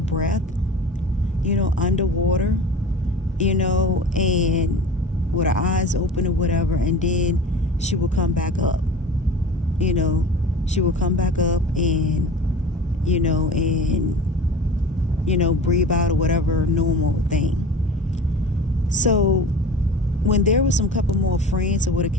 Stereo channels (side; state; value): both; normal; correlation 0.38